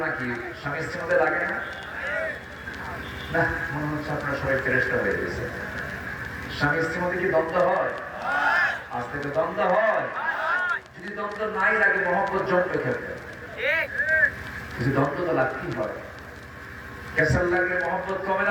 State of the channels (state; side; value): identical; both; correlation 1.00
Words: নাকি? স্বামী স্ত্রীর মধ্যে লাগে না? না, মনে হচ্ছে আপনারা সবাই ফেরেশতা হয়ে গেছে। স্বামী স্ত্রীর মধ্যে কি দ্বন্দ্ব হয়? আজ থেকে দ্বন্দ্ব হয়। যদি দ্বন্দ্ব নাই লাগে, মহব্বত জমবে খেলবে। কিছু দ্বন্দ্ব তো লাগতেই হয়। ক্যাসাল লাগলে মহব্বত কমে